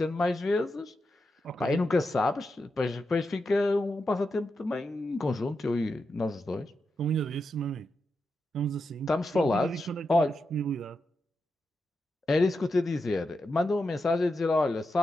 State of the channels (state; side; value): normal; both; correlation 0.87